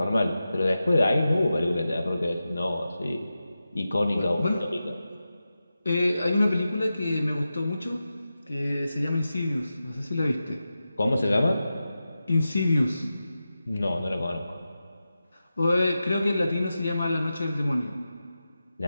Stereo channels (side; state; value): both; inverted; correlation -0.92